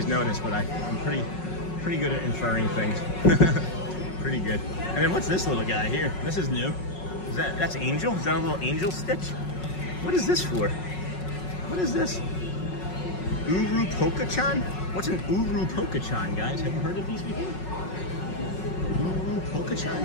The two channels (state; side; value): late; right; 5.4 ms